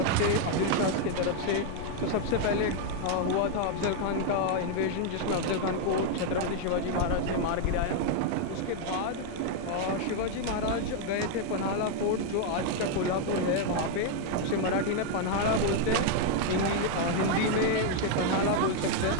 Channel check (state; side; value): different; both; correlation 0.00